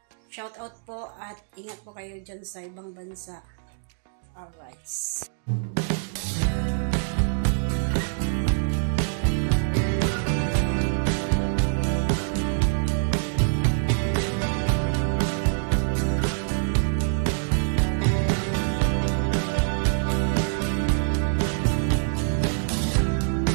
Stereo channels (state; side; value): silent; left; digital silence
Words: Shoutout po at ingat po kayo dyan sa ibang bansa. Alright.